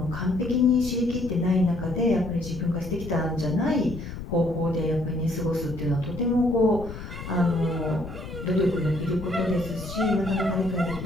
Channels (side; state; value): left; noise; rumble, 10 dB below the sound